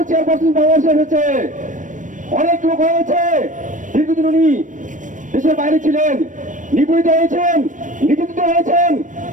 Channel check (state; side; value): late; left; 0.37 ms